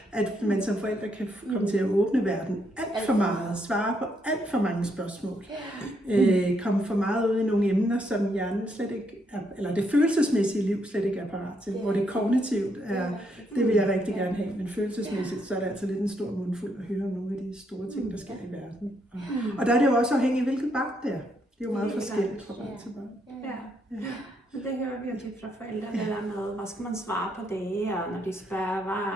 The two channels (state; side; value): normal; both; correlation 0.75